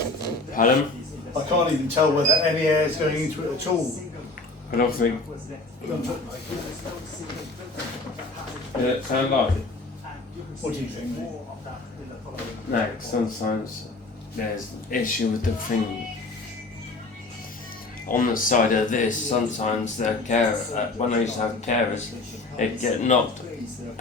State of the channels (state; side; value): quieter; right; 3.2 dB